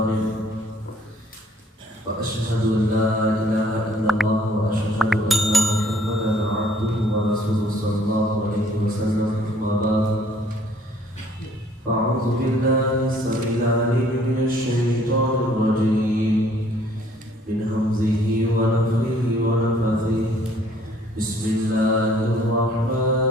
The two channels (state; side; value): normal; both; correlation 0.60